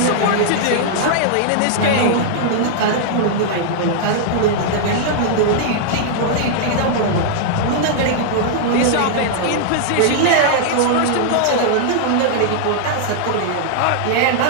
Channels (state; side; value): different; both; correlation -0.01